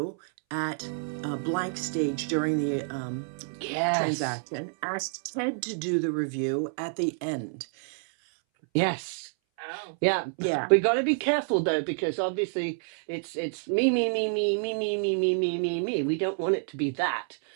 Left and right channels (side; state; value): left; silent; 59 dB below the other